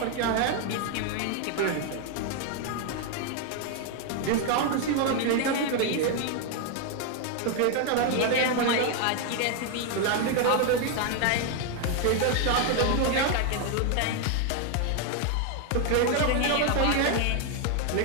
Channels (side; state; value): both; different; correlation 0.01